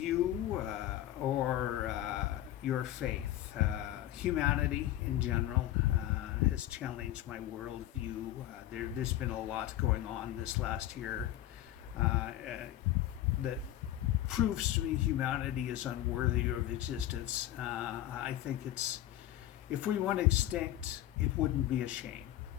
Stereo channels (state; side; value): quieter; right; 13.6 dB